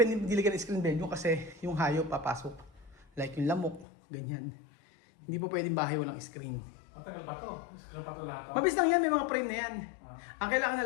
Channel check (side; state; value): right; drops out; at 3.9 s